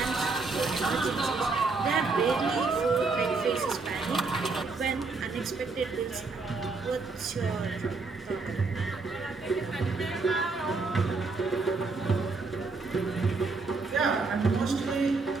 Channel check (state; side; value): quieter; left; 4.0 dB